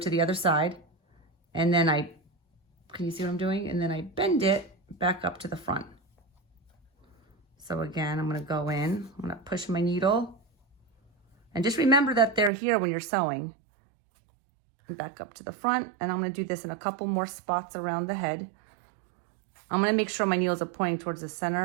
the other side, and then can you see what I'm doing? And then I bend it back up to the front. So again, I'm going to go in. I'm going to push my needle. And just remember that they're here when you're sewing. And back up to the front. And I'm going to do this in a couple more spots around the head. I'm going to make sure my needles are pointing towards the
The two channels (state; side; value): drops out; left; at 12.5 s